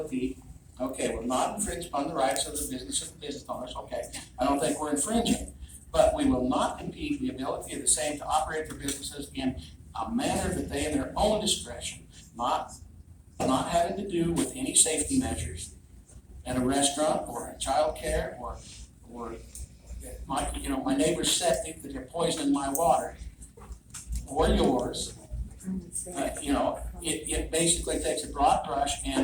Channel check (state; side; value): identical; both; correlation 1.00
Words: okay, will not infringe upon the rights of the business owners, okay. I don't think we're infringing, but we will not impede the ability of the same to operate their businesses in a manner that they in their own discretion, not having to do with any safety measures at a restaurant or a childcare or my neighbor's septic that they're poisoning my water or yours. It basically takes a broad brush